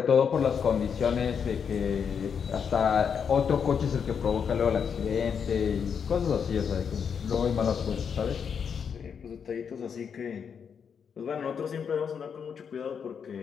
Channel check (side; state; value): right; quieter; 6.9 dB